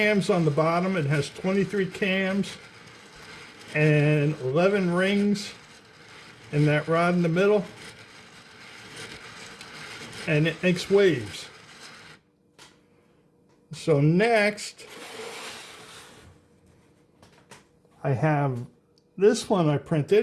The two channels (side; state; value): both; identical; correlation 1.00